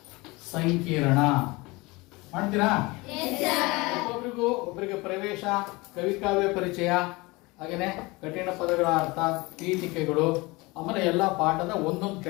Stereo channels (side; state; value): right; quieter; 23.7 dB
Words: ಸಂಕಿರಣ ಮಾಡ್ತೀರಾ? ಒಬ್ಬರಿಗೆ ಪ್ರವೇಶ, ಕವಿಕಾವ್ಯ ಪರಿಚಯ, ಹಾಗೇನೆ ಕಠಿಣ ಪದಗಳ ಅರ್ಥ, ಪೀಠಿಕೆಗಳು, ಆಮೇಲೆ ಎಲ್ಲ ಪಾಠದ ಒಂದೊಂದು